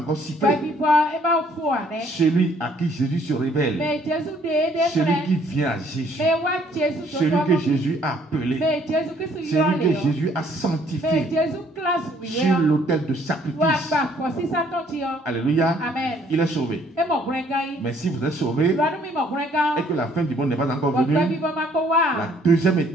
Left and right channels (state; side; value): normal; both; correlation 0.62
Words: si près, celui à qui Jésus se révèle, celui qui vient à Jésus, celui que Jésus a appelé, celui que Jésus a sanctifié sur l'autel de sacrifice. Alléluia. Amen. Il est sauvé. Mais si vous êtes sauvé et que la fin du monde n'est pas encore venue, la deuxième